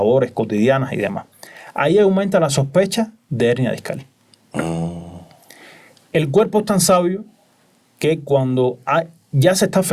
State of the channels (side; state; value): both; identical; correlation 1.00